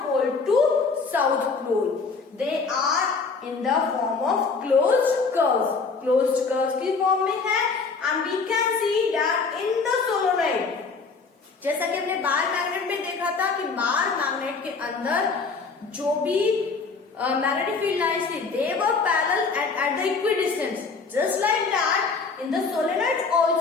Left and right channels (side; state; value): right; quieter; 4.6 dB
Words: pole to south pole. They are in the form of closed curves की form में है। And we can see that in the solenoid, जैसा कि हमने बार मैग्नेट में देखा था कि बार मैग्नेट के अंदर जो भी magnetic field lines थे, they were parallel at the equidistance. Just like that, in the solenoid